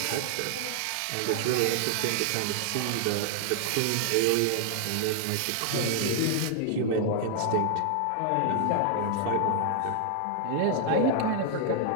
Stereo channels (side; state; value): both; different; correlation 0.00